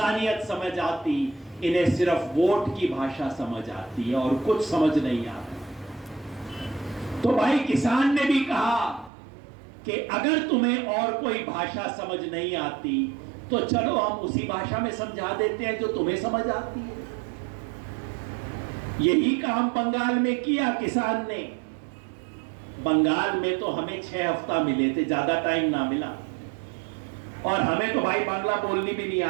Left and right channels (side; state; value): left; drops out; at 9.1 s